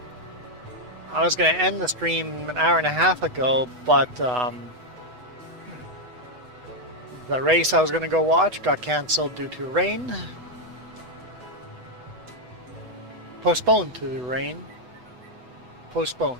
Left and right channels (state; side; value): late; left; 8.0 ms